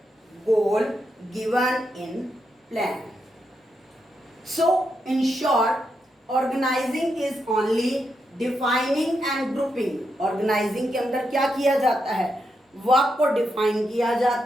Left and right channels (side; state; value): both; normal; correlation 0.83